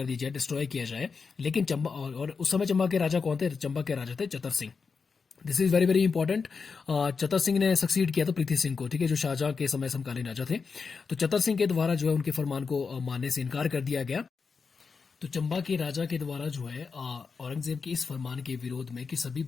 दिया जाए, डिस्ट्रॉय किया जाए। लेकिन चंबा, और उस समय चंबा के राजा कौन थे? चंबा के राजा थे Chatar Singh. This is very very important. Chatar Singh ने सक्सीड किया था पृथ्वी सिंह को, ठीक है, जो शाहजहां के समय समकालीन राजा थे। तो चतर सिंह के द्वारा जो है उनके फरमान को मानने से इनकार कर दिया गया। तो चंबा के राजा के द्वारा जो है औरंगजेब के इस फरमान के विरोध में कि सभी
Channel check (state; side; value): quieter; right; 5.2 dB